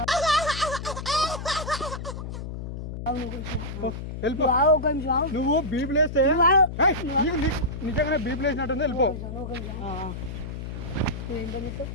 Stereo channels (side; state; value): left; noise; hum, 7 dB below the sound